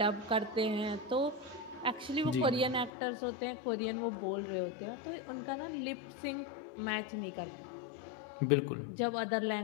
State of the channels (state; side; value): drops out; right; at 2.9 s